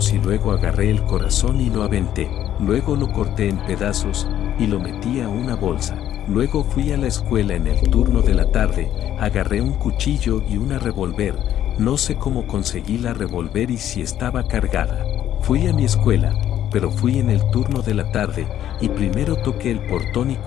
y luego agarré el corazón y lo aventé. Luego lo corté en pedazos y lo metí a una bolsa. Luego fui a la escuela en el turno de la tarde, agarré un cuchillo y una revólver. No sé cómo conseguí la revólver y si estaba cargada. Fui a mi escuela, pero fui en el turno de la tarde y primero toqué el portón y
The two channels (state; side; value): quieter; right; 11.4 dB